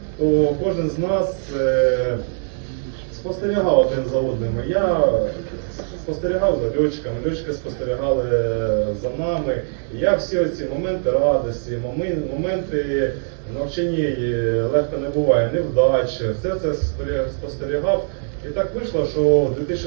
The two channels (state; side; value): silent; left; 63 dB below the other